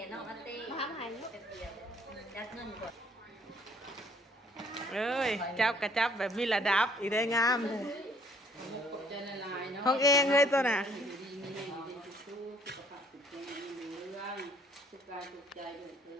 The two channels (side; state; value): both; normal; correlation 0.61